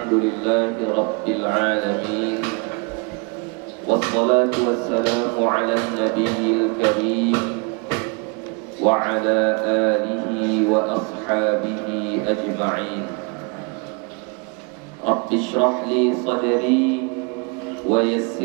لله رب العالمين، والصلاة والسلام على النبي الكريم وعلى آله وأصحابه أجمعين. رب اشرح لي صدري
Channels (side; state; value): left; quieter; 32.2 dB